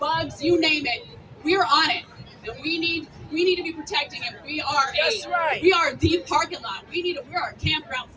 you name it. We're on it, and we need to be protecting it. We are the parking lot. We are a campground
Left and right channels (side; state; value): both; identical; correlation 1.00